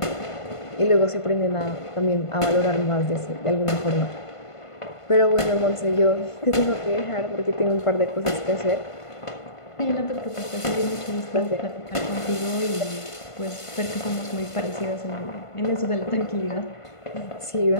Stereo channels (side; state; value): right; late; 1.5 ms